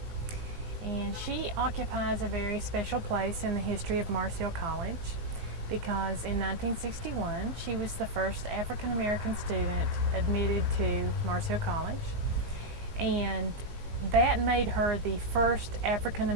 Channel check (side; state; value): left; late; 18 ms